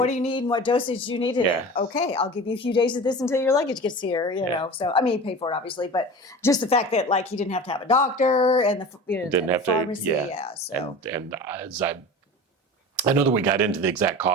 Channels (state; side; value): normal; both; correlation 0.35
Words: do you need and what dosage do you need today? Okay, I'll give you a few days of this until your luggage gets here, you know. So, I mean, he paid for it, obviously, but just the fact that, like, he didn't have to have a doctor and the pharmacy. So. And as I know that we got into the exact